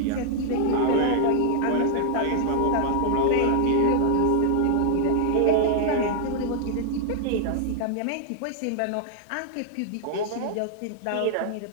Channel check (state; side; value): different; both; correlation 0.00